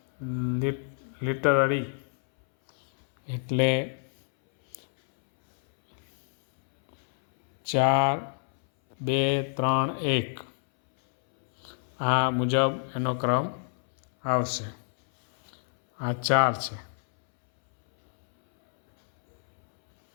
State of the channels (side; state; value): right; silent; 60 dB below the other